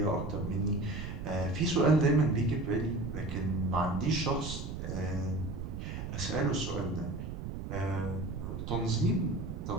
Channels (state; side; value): noise; right; rumble, 6 dB below the sound